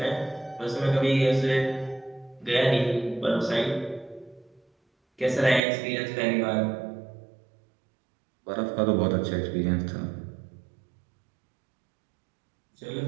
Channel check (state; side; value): drops out; left; at 5.6 s